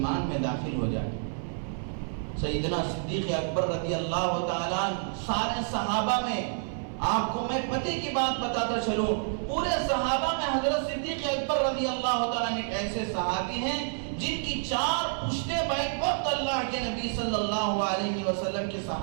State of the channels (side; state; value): left; silent; 59 dB below the other